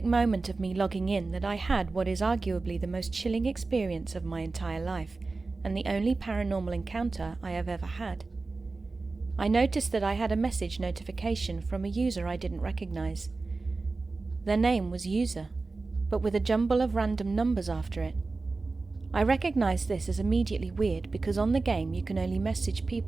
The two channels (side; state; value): left; quieter; 3.7 dB